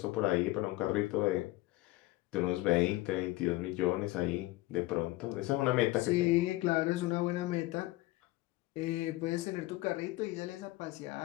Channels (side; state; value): right; quieter; 18.9 dB